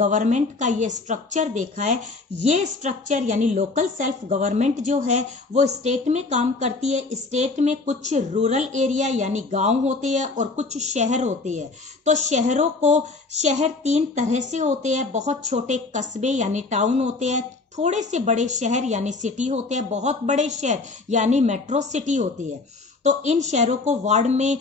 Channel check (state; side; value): quieter; right; 3.7 dB